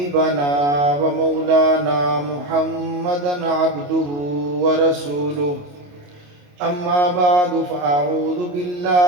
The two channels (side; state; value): left; late; 28 ms